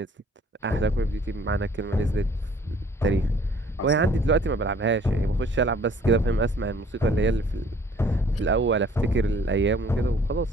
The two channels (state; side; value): normal; both; correlation 0.56